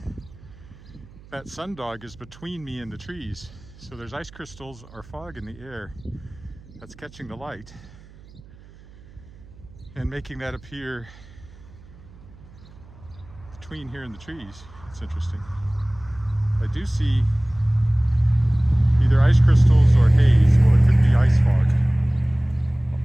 That sundog is between me and the trees. So there's ice crystals or fog in the air that's catching the light and making that appear between here and the trees. It's interesting. I do see either ice crystals or haze, or it could be ice fog.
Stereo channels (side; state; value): right; noise; hum, 22 dB below the sound